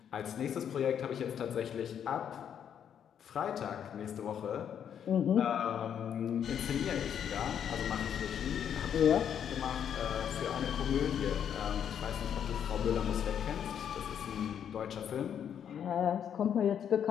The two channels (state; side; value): quieter; right; 8.7 dB